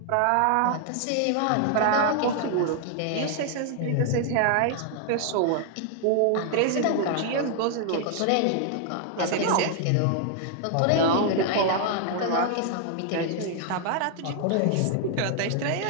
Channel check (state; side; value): different; both; correlation 0.00